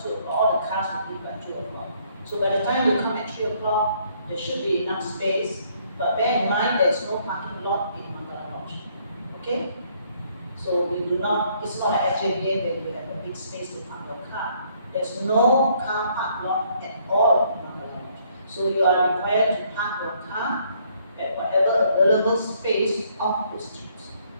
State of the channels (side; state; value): both; inverted; correlation -0.66